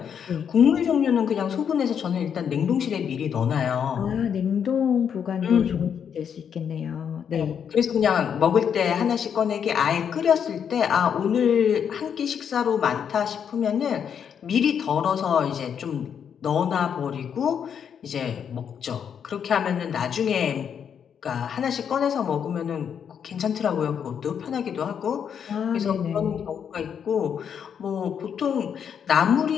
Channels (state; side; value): quieter; right; 7.8 dB